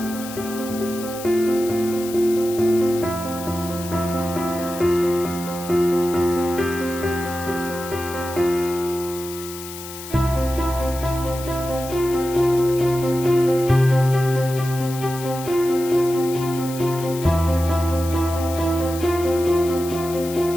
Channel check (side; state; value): left; noise; hiss, 13 dB below the sound